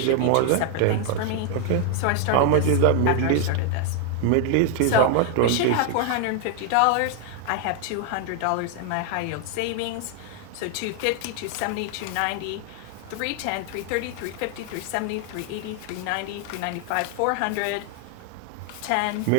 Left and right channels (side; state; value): both; different; correlation 0.00